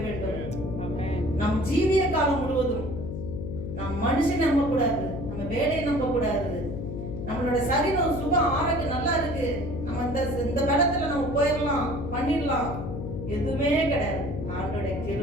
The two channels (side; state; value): left; noise; hum, 6 dB below the sound